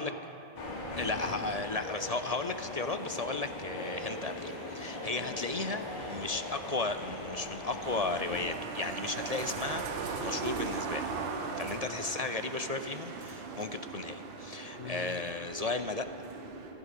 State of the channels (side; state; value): left; late; 1.7 ms